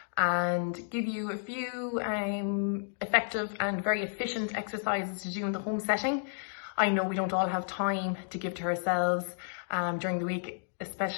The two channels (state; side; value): silent; right; digital silence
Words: and give you a few effective and very efficient exercises to do in the home setting. I know we don't all have time to give to ourselves during the week,